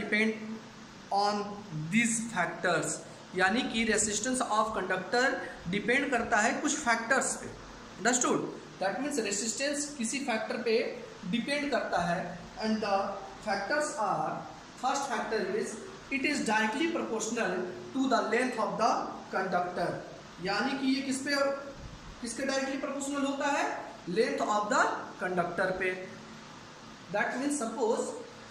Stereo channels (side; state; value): both; identical; correlation 1.00